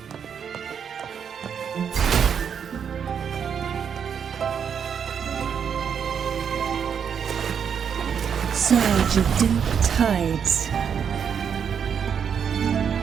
Surge of deep tides.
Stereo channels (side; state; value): left; quieter; 7.5 dB